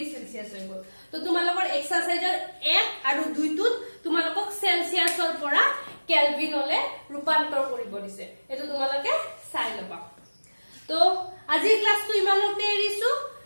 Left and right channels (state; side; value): inverted; both; correlation -1.00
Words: সেলসিয়াস হৈ গল তো তোমালোকৰ এক্সাৰসাইজৰ 1 আৰু 2 টোত তোমালোকক সেলসিয়াসৰ পৰা কেলভিনলে ৰূপান্তৰ কৰিব দিছে এটো তোমালোকে চাই লবা তো আজিৰ ক্লাসটো ইমানতে এৰিছো